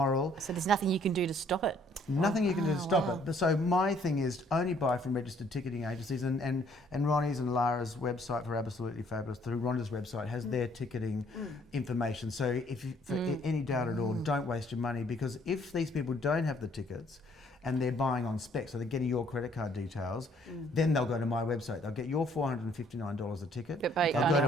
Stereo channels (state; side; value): normal; both; correlation 0.63